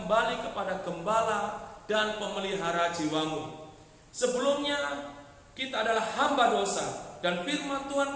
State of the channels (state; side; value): identical; both; correlation 1.00